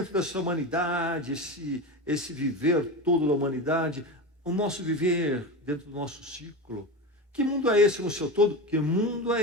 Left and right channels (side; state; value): both; normal; correlation 0.22